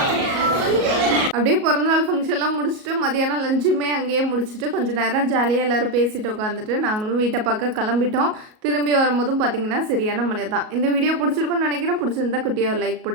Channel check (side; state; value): left; late; 37 ms